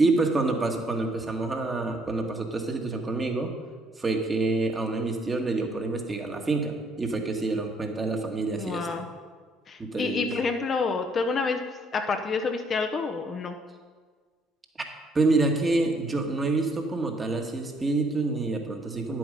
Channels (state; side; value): normal; both; correlation 0.66